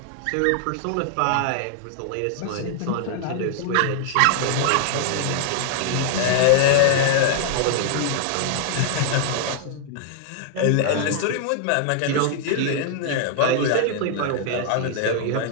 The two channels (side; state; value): both; different; correlation 0.00